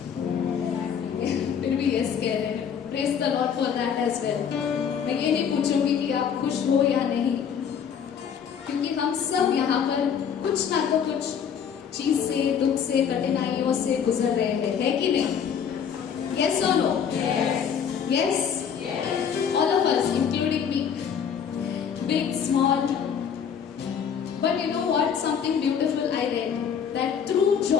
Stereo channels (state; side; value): quieter; right; 7.6 dB